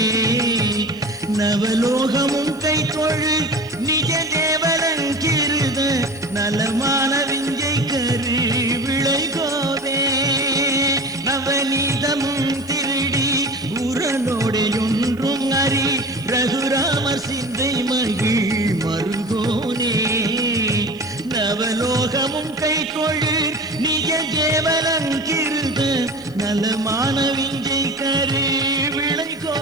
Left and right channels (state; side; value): noise; left; hiss, 27 dB below the sound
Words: நவலோகமும் கை தொழு நிஜ தேவலங்கிருத நலமான விஞ்சை கரு விளைகோவே. நவநீதமும் திருடி உரலோடை ஒன்றும் அறி ரகுராமர் சிந்தை மகிழ் மருகோனே. நவலோகமும் கை கொழு நிஜ கேவலங்கிருத நலமான விஞ்சை கரு